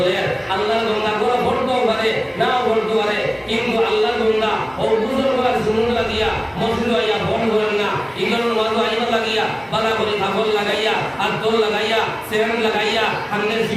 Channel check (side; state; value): both; identical; correlation 1.00